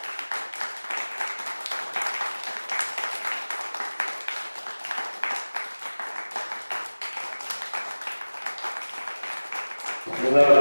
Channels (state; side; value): inverted; both; correlation -1.00